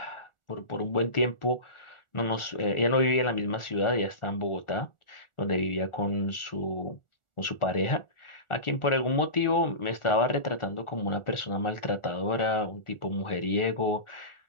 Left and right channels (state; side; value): late; right; 1.4 ms